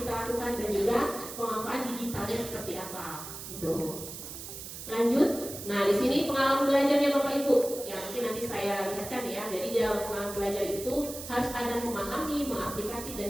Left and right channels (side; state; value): right; noise; hiss, 10 dB below the sound